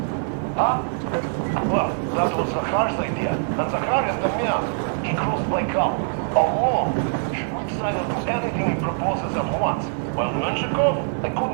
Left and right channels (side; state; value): left; silent; 62 dB below the other